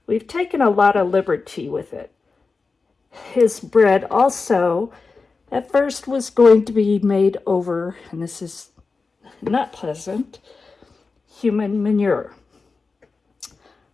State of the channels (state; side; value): quieter; right; 4.2 dB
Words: we've taken a lot of liberty with it. His bread also, at first, was going to be made over, and this is not pleasant, human manure.